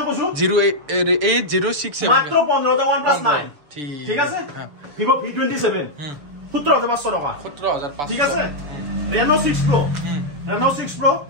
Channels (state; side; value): late; left; 7.1 ms